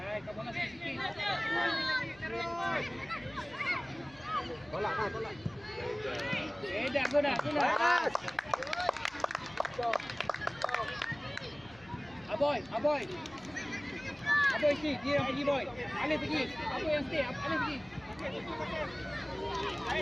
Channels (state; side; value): noise; left; hum, 24 dB below the sound